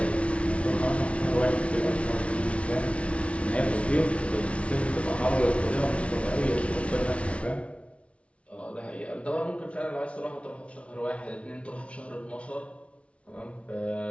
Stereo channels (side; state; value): right; late; 0.062 ms